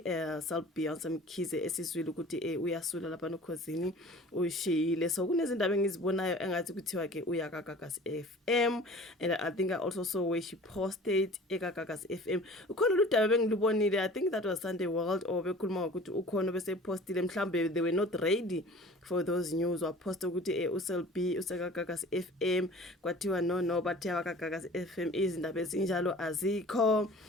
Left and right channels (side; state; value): both; normal; correlation 0.45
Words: Beyonce Mkhize esizwile ukuthi uyasula lapha nokhosini ushiyile. So kunezindaba engizibonayo engathi kuthiwa ke uyakagagas FM, and I think I also saw where she posted ekagagas FM. Ukhona ludaba bengilubonile, I think that was Sunday World, or bekhuluma ukuthi ukhona bese postile mhlambe they were not ready for those news, or post ukuthi uSelby usekagagas FM kwathiwa no bathi akagagas FM izindaba ezinjalo azikho.